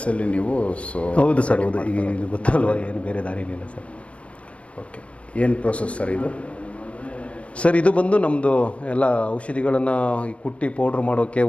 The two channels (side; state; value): right; late; 0.062 ms